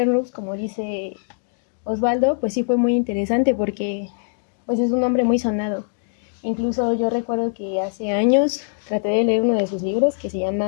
como dice Osvaldo, pues sí fue muy interesante porque pues es un hombre muy sonado. Incluso yo recuerdo que hace años traté de leer uno de sus libros que se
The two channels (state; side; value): silent; right; digital silence